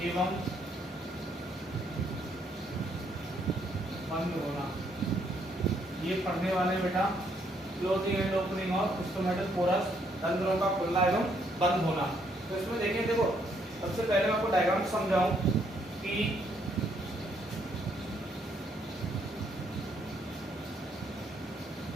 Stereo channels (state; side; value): normal; both; correlation 0.71